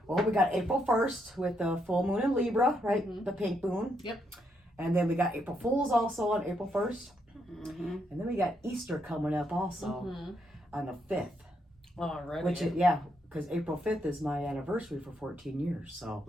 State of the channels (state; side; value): normal; both; correlation 0.78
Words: well, we got April 1st with the full moon in Libra, right? Mhm. The pink moon. Yep. And then we got April Fools also on April 1st. Mm-hmm. And then we got Easter coming up also on the 5th. Already. Which is, because April 5th is my anniversary for 14 years. So,